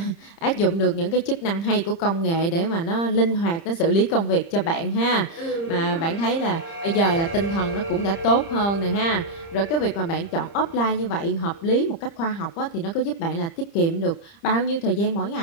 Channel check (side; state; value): right; late; 30 ms